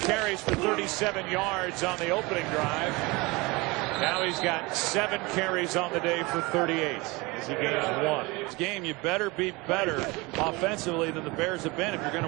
carries for 37 yards on the opening drive. Now he's got 7 carries on the day for 38 as he gains 1. This game, you better be better offensively than the Bears have been if you're going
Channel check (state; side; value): quieter; left; 24.5 dB